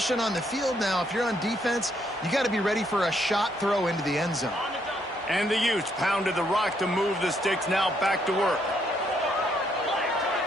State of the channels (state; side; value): normal; both; correlation 0.73